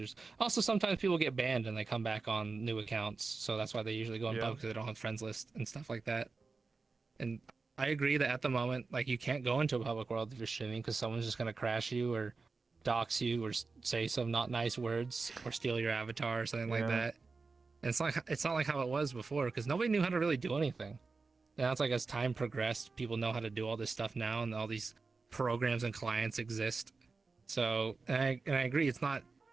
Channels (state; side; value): quieter; left; 4.2 dB